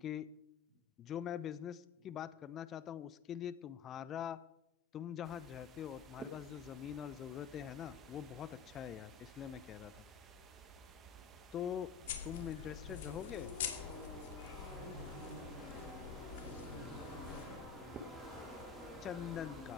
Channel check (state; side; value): quieter; right; 6.6 dB